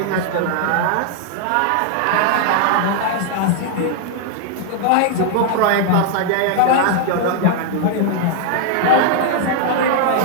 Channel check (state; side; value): different; both; correlation 0.00